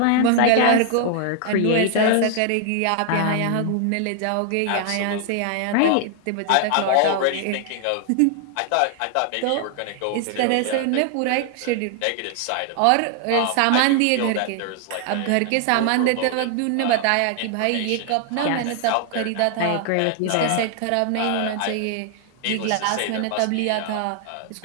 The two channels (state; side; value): different; both; correlation 0.00